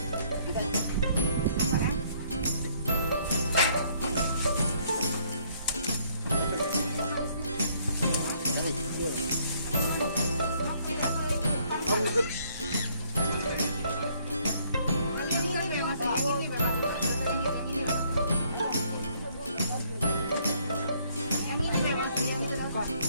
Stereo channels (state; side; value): inverted; both; correlation -0.65